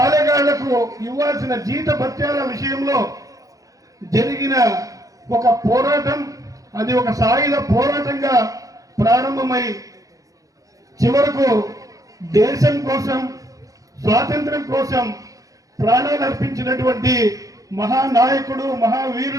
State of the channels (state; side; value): late; left; 0.17 ms